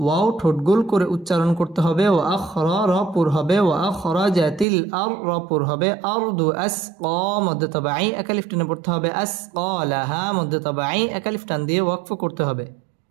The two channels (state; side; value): drops out; left; at 4.7 s